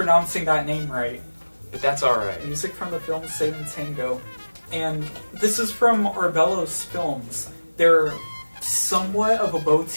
that name right. But that's alright. Music from the film Satan Tango. And this is from Arbellos Films. They're somewhat of a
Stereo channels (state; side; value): inverted; both; correlation -1.00